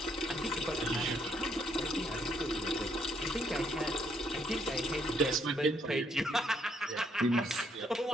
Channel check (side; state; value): both; normal; correlation 0.71